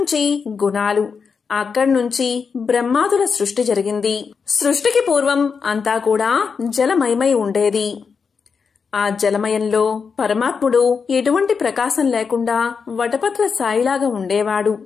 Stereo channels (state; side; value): quieter; right; 5.7 dB